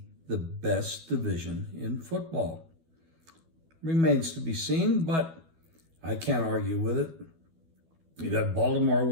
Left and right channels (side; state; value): left; late; 12 ms